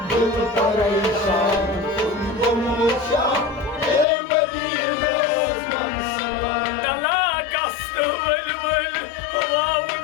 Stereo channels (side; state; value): right; drops out; at 4.0 s